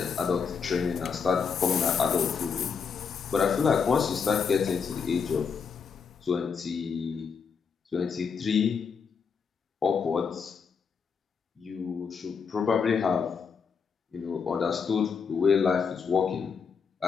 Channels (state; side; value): quieter; right; 6.1 dB